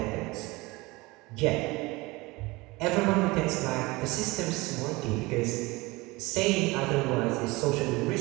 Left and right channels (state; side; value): quieter; left; 22.7 dB